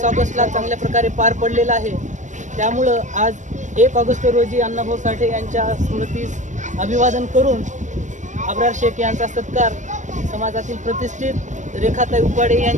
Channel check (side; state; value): left; late; 0.35 ms